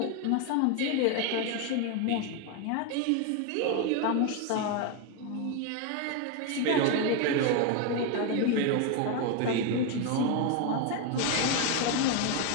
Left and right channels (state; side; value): different; both; correlation 0.02